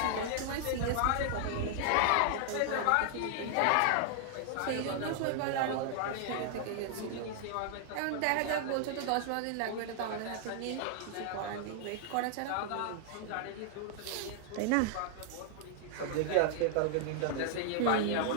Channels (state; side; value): different; both; correlation 0.00